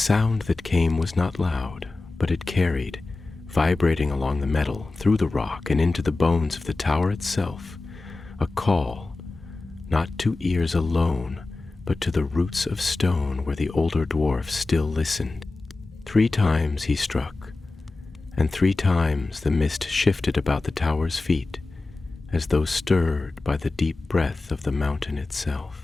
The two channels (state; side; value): quieter; right; 3.4 dB